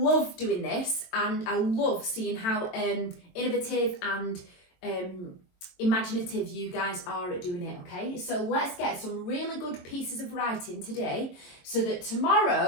doing this, and I love seeing how innovative and imaginative you guys are at doing it, okay? So let's get some really good pieces of writing today so that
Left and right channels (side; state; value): right; late; 22 ms